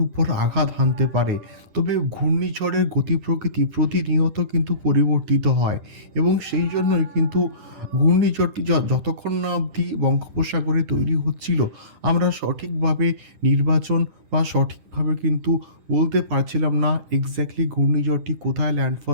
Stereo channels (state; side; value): late; left; 10 ms